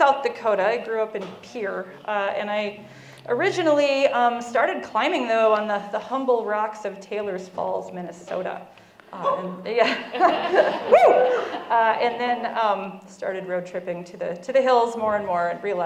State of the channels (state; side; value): identical; both; correlation 1.00